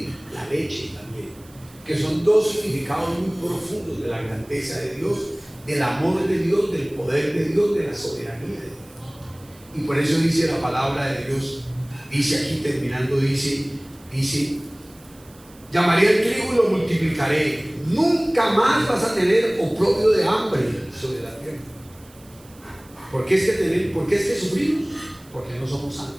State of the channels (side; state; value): right; noise; hiss, 26 dB below the sound